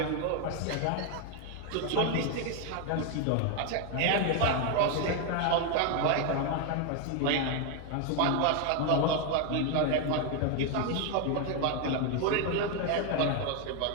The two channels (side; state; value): both; different; correlation 0.01